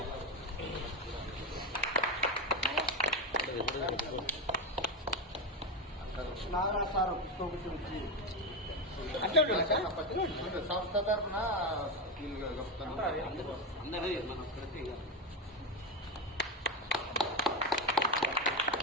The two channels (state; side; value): normal; both; correlation 0.12